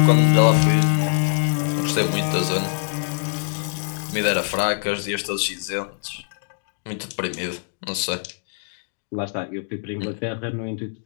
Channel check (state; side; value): silent; right; digital silence